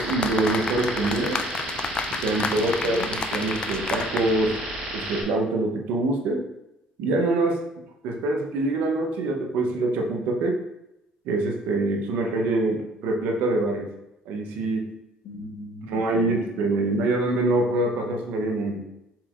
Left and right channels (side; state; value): both; normal; correlation 0.56